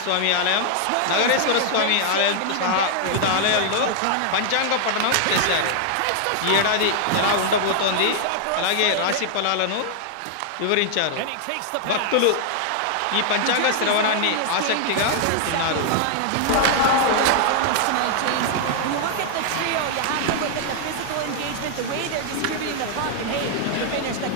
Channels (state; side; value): different; both; correlation -0.01